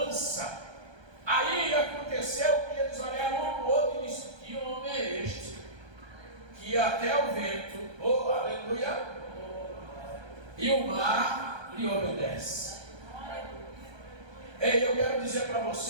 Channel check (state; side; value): late; left; 1.3 ms